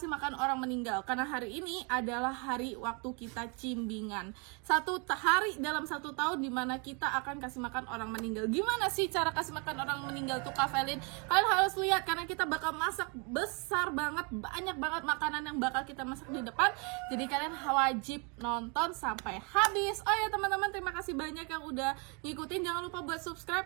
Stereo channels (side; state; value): left; quieter; 33.6 dB